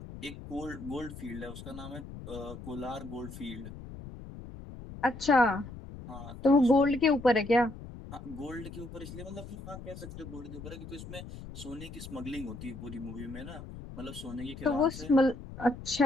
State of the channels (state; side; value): noise; left; rumble, 12 dB below the sound